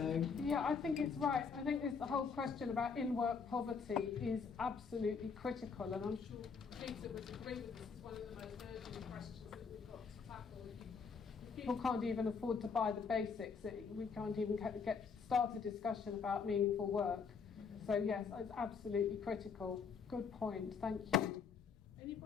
yeah, I think it's right. I think the whole question about in-work poverty is absolutely critical, and I'm sure Peter would agree with this. It's one of the most urgent questions that we've got to tackle. If people can't even afford to buy the basics, we can't even start a discussion about meaningful work. So yes, it's absolutely critical. Good point. Thank you.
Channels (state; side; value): quieter; right; 5.7 dB